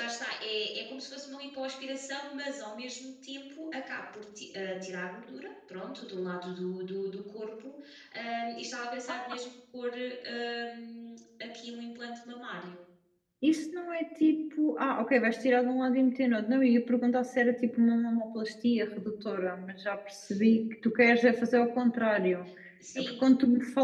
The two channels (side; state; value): both; identical; correlation 1.00